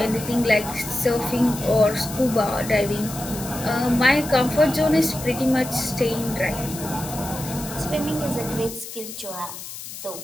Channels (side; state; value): left; noise; hiss, 11 dB below the sound